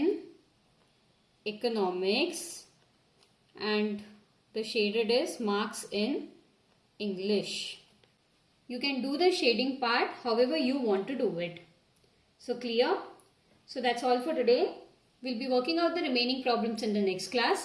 economics and the shaded is marks in English. You can do the shading part however you want to do it. So clear? So that's all for today. We'll be working out the remaining problems in the next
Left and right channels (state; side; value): identical; both; correlation 1.00